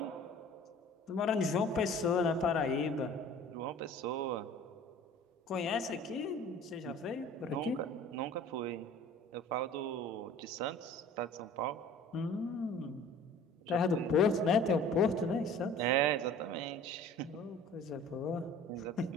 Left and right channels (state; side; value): normal; both; correlation 0.46